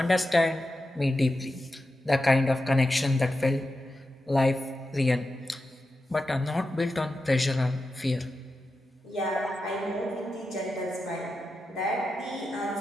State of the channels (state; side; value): normal; both; correlation 0.90